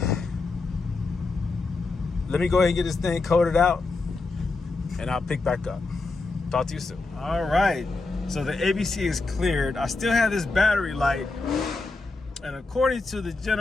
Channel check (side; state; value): right; quieter; 3.6 dB